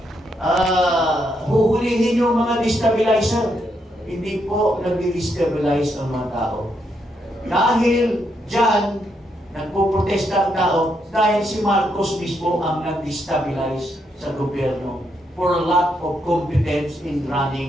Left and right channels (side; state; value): both; normal; correlation 0.78